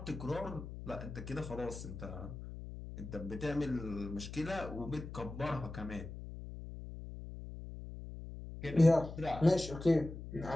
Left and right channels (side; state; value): left; noise; hum, 10 dB below the sound